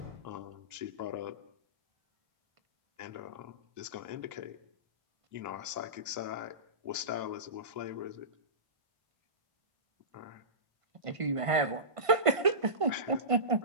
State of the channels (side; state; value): left; late; 1.5 ms